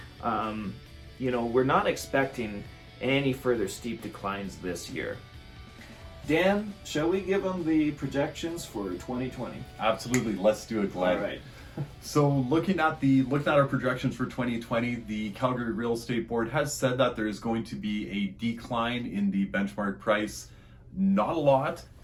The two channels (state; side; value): identical; both; correlation 1.00